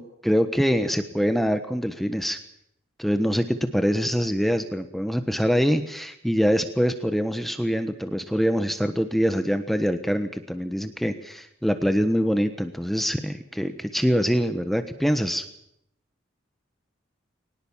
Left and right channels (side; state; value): both; normal; correlation 0.95